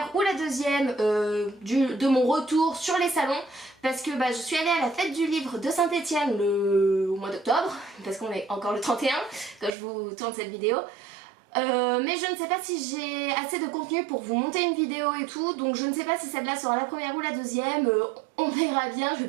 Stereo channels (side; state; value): left; drops out; at 9.7 s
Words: ou la deuxième de mon retour sur les salons, parce que je suis allée à la fête du livre de Saint-Etienne au mois d'octobre, parce qu'on est encore le 31 quand je vous tourne cette vidéo. Mais je ne sais pas si j'ai assez de contenu pour vous monter une vidéo et tout, donc je ne sais pas si celle-là sera la première ou la deuxième, on verra bien. Je vais